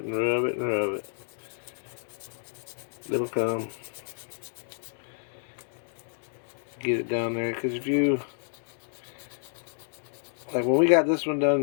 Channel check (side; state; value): right; silent; digital silence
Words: and rub it and rub it. It'll come. Get it down there, because if you, like when we got this one